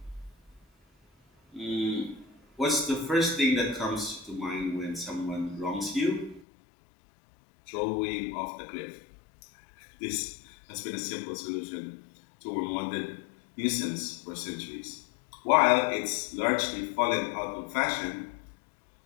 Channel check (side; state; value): right; drops out; at 6.5 s